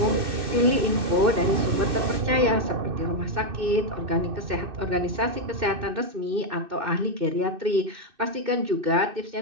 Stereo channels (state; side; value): late; left; 2.6 ms